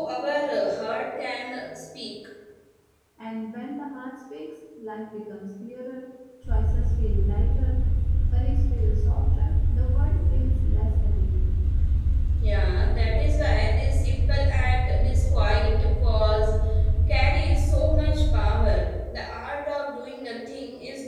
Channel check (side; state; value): both; identical; correlation 1.00